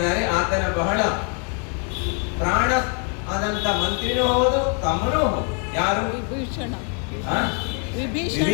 ಆತನ ಬಹಳ ಪ್ರಾಣ ಆದಂತ ಮಂತ್ರಿನೂ ಹೌದು, ತಮ್ಮನೂ ಹೌದು. ಯಾರು? ವಿಭೀಷಣ. ಆ?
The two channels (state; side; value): quieter; right; 38.0 dB